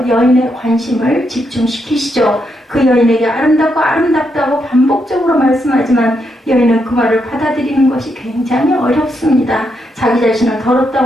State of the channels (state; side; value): normal; both; correlation 0.80